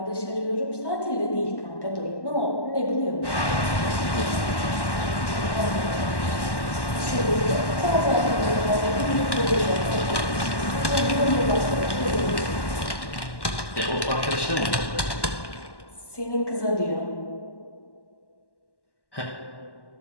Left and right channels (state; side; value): late; right; 1.1 ms